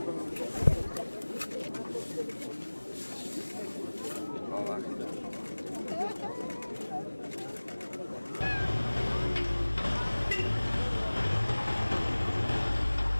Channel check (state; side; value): inverted; both; correlation -1.00